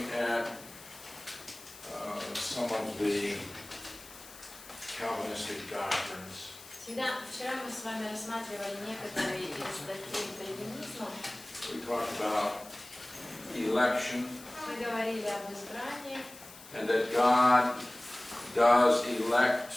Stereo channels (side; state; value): left; noise; hiss, 18 dB below the sound